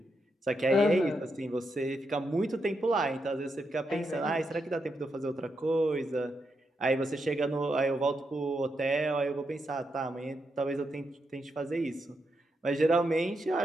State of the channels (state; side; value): normal; both; correlation 0.83